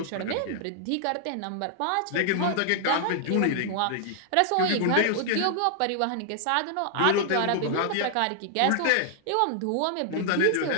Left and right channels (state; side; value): different; both; correlation -0.01